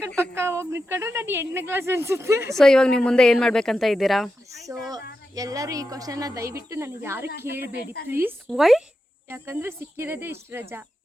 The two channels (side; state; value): both; normal; correlation 0.89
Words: ಪಕ್ಕ ಹೋಗಿ ನಿಂತ್ಕೊಂಡ್ರೆ ನಾನು 8ನೇ ಕ್ಲಾಸ್ ಅನ್ಸುತ್ತೆ. ಸೊ ಇವಾಗ ನೀವು ಮುಂದೆ ಏನ್ ಮಾಡ್ಬೇಕಂತ ಇದ್ದೀರಾ? ಸೊ ಎಲ್ಲರೂ ಈ ಕ್ವಶನ್ ದಯವಿಟ್ಟು ನನಗೆ ಯಾರು ಕೇಳಬೇಡಿ ಪ್ಲೀಸ್. ವೈ? ಯಾಕಂದ್ರೆ ಸಿಕ್ಕಿರೋದೇ ಇಷ್ಟು ರಜಾ.